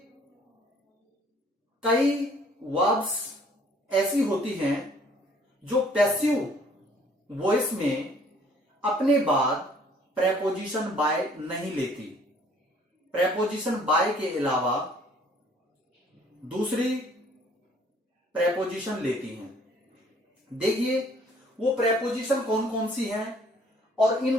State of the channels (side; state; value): both; normal; correlation 0.59